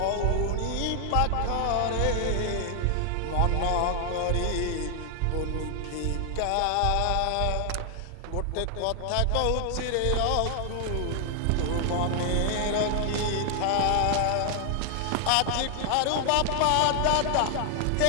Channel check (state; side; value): different; both; correlation 0.00